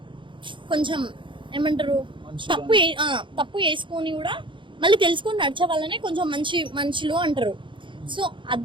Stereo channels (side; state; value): left; late; 0.24 ms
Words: కొంచెం ఏమంటారు, తప్పు చేసుకొని కూడా మళ్ళీ తెలుసుకొని నడిచే వాళ్ళనే కొంచెం మంచి మనుషులు అంటారు. సో